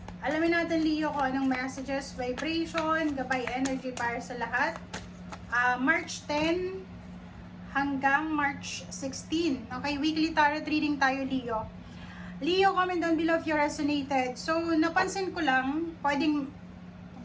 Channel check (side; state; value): both; identical; correlation 1.00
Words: Alamin natin Leo kung anong messages, vibration, gabay energy para sa lahat. March 10 hanggang March 16. Okay, weekly tarot reading tayo Leo. Leo, comment down below if you resonated. So, napansin ko lang,